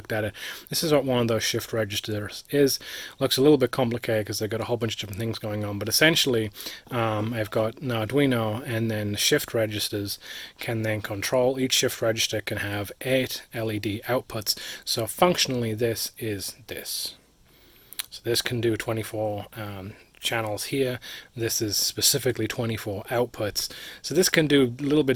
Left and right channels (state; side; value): identical; both; correlation 1.00